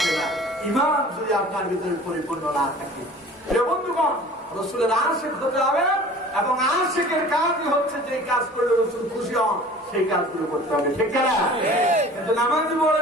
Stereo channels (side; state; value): both; normal; correlation 0.45